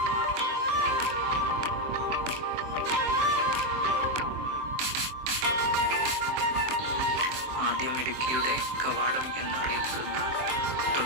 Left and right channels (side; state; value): left; late; 23 ms